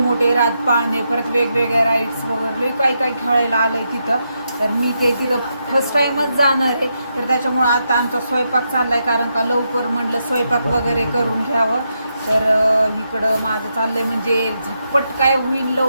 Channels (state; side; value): inverted; both; correlation -0.83